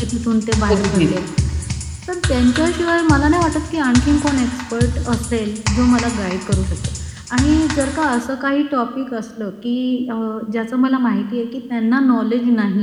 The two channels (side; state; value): both; identical; correlation 1.00